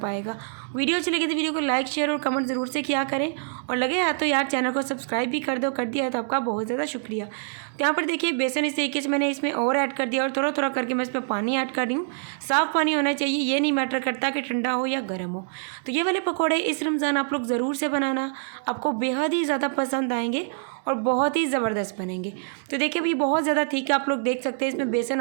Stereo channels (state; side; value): silent; left; digital silence